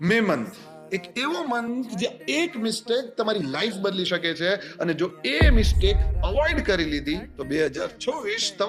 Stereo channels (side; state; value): both; identical; correlation 1.00